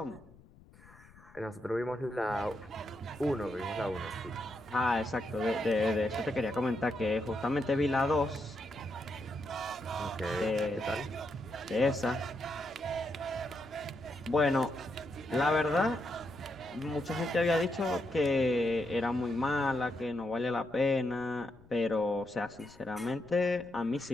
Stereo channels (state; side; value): noise; left; rumble, 24 dB below the sound